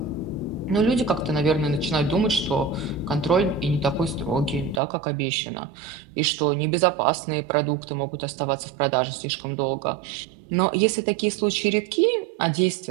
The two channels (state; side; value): drops out; left; at 4.8 s